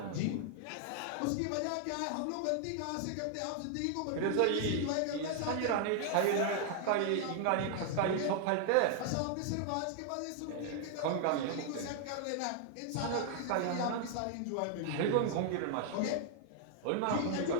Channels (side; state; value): both; different; correlation 0.00